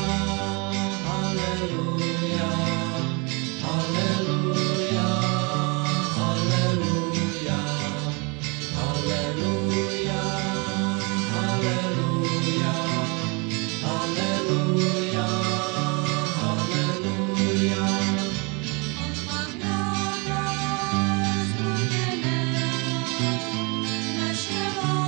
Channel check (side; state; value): left; quieter; 30.7 dB